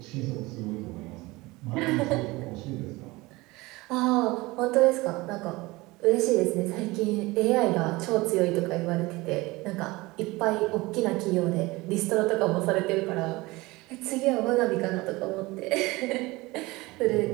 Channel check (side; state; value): left; quieter; 21.7 dB